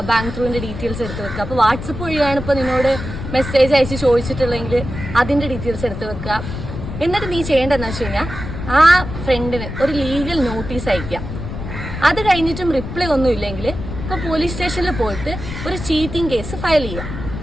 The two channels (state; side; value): noise; left; rumble, 8 dB below the sound